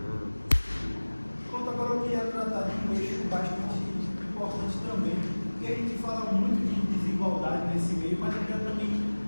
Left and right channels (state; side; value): inverted; both; correlation -1.00